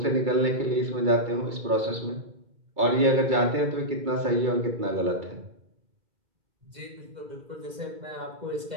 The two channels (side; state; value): left; late; 2.3 ms